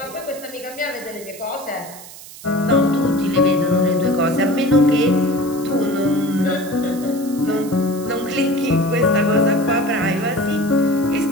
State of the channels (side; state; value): right; noise; hiss, 16 dB below the sound